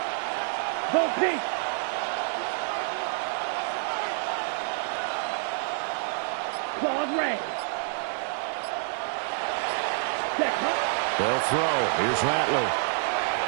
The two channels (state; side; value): silent; left; digital silence